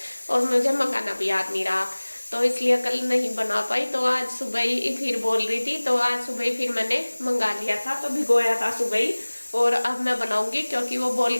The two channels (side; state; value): both; inverted; correlation -1.00